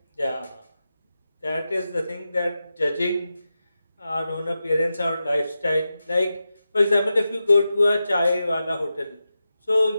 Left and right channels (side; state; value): both; inverted; correlation -0.91